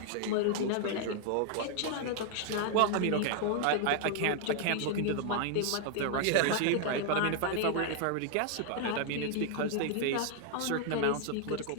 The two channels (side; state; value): both; different; correlation 0.00